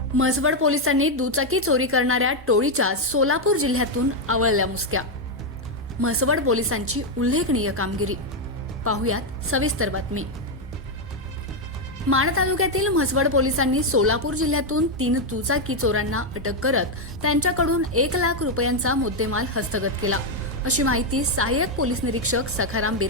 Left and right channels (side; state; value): both; normal; correlation 0.03